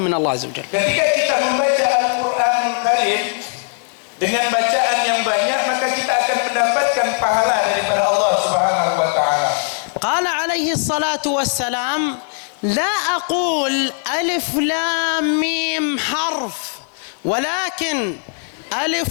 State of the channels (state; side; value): silent; right; 58 dB below the other